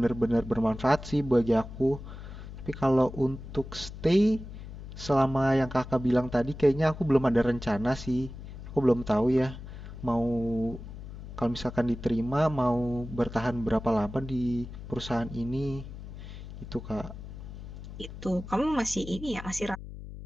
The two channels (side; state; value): left; noise; hum, 12 dB below the sound